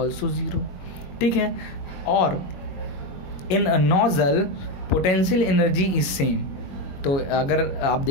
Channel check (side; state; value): right; late; 21 ms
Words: 0, ठीक है। और in nozzle potential energy is same, तो अगर आप